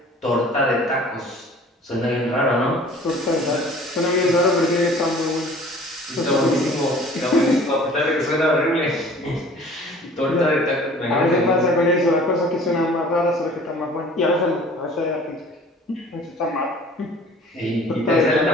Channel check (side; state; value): both; normal; correlation 0.49